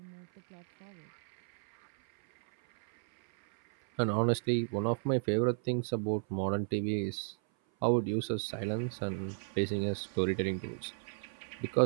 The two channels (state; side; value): silent; left; 56 dB below the other